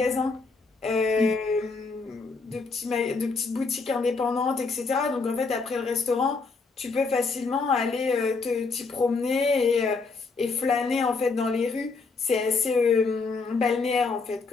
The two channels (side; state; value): right; quieter; 4.3 dB